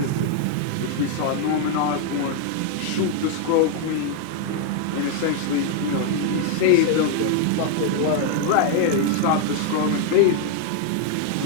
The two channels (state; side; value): different; both; correlation 0.00